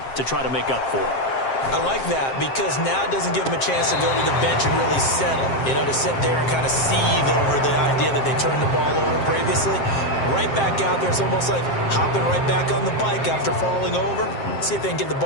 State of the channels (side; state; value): right; late; 7.6 ms